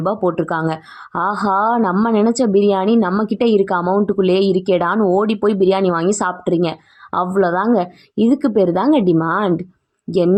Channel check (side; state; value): both; identical; correlation 1.00